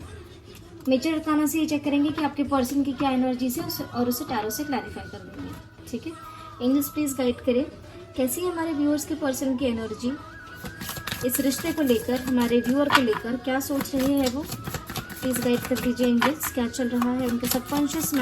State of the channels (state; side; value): identical; both; correlation 1.00